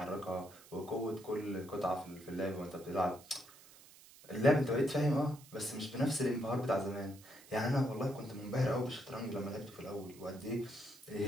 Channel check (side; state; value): right; noise; hiss, 21 dB below the sound